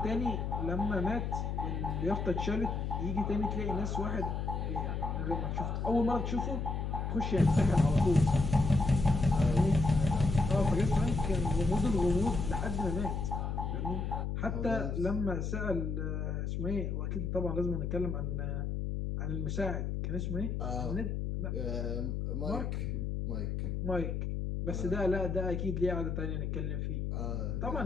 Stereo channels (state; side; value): noise; left; hum, 2 dB below the sound